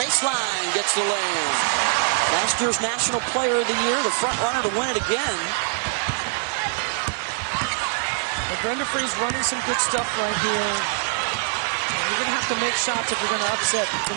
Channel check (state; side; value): silent; left; digital silence